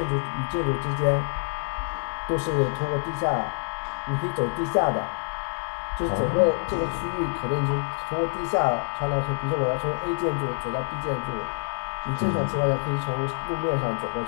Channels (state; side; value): silent; right; digital silence